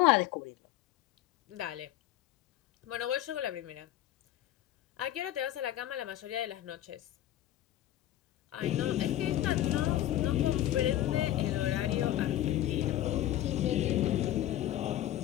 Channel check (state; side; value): quieter; right; 13.3 dB